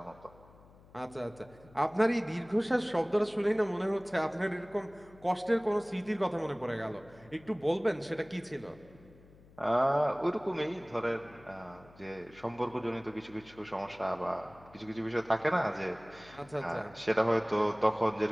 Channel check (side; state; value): left; noise; hum, 24 dB below the sound